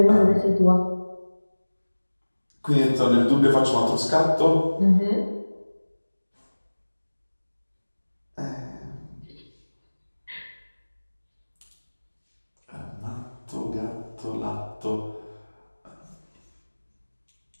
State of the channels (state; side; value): inverted; both; correlation -1.00